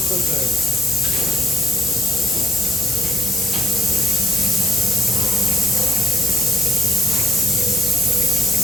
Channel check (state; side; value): normal; both; correlation 0.69